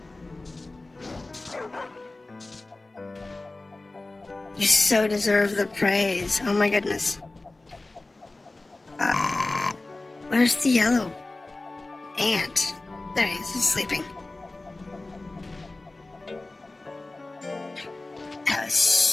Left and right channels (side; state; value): right; quieter; 3.0 dB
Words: You so deserve the praise. Oh my goodness. Where's the yellow ant? There he is, he's sleeping. That was